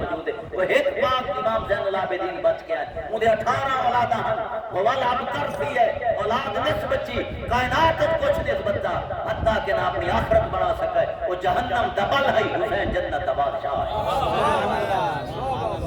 ہے۔ وہ ایک پاک امام زین العابدین بچ کے آئے، انہیں 18 اولاداں ہیں، وہ والا اب ترسی ہے، اولاد نصف بچی، کائنات کچھ نسبت دا، حتیٰ کہ نہ اپنی آخرت بنا سکے، وہ جہنم دبل ہے، حسین جنت دا بادشاہ ہے۔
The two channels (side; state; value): both; identical; correlation 1.00